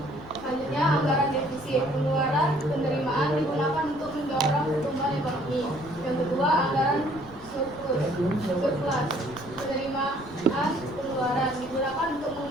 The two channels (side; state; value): left; noise; rumble, 19 dB below the sound